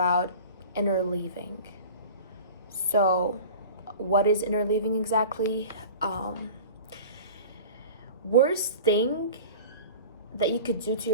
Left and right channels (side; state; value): both; inverted; correlation -0.38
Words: interleaving. So, what is interleaving exactly? Worst thing that you could do to